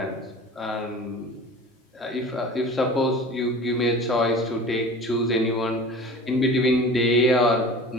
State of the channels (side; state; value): both; normal; correlation 0.39